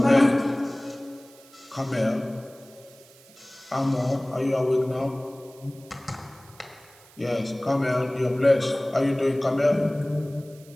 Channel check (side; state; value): right; noise; hiss, 25 dB below the sound